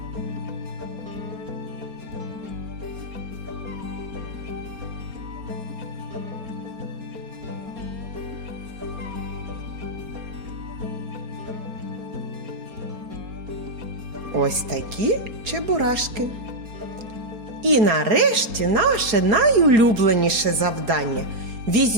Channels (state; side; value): late; left; 4.3 ms